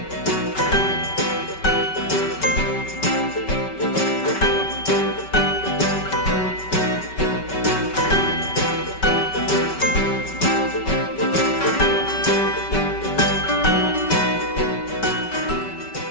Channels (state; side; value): late; right; 5.2 ms